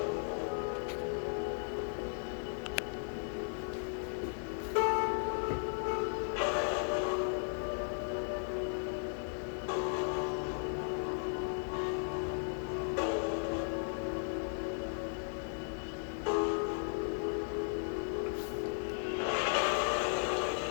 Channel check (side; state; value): right; silent; 54 dB below the other